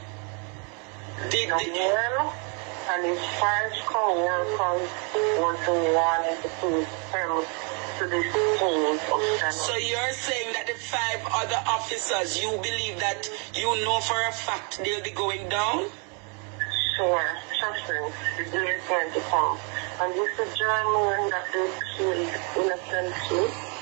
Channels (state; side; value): quieter; left; 36.4 dB